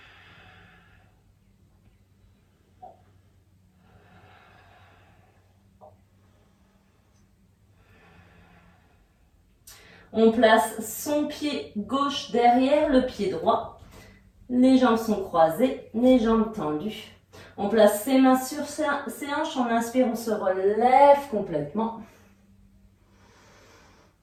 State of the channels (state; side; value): identical; both; correlation 1.00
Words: On place son pied gauche derrière le pied droit. Les jambes sont croisées, les jambes tendues. On place ses mains sur ses hanches. On inspire, on se relève complètement.